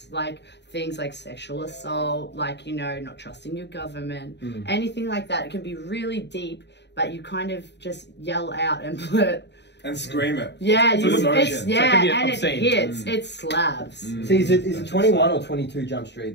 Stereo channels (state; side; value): late; right; 0.50 ms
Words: like things like sexual assault, like, you know, not trusting your government, anything like that. It can be really deep, but you kind of just yell out and blurt. And scream it. Yeah, With emotion. and it hits. It slabs. See, is it 21 or 22 Jump